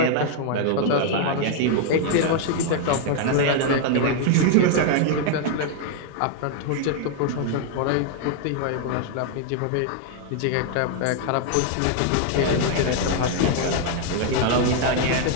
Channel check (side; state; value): both; different; correlation 0.00